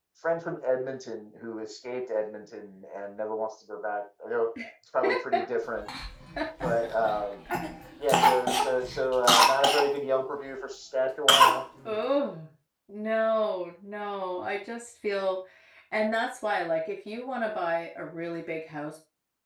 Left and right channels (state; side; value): identical; both; correlation 1.00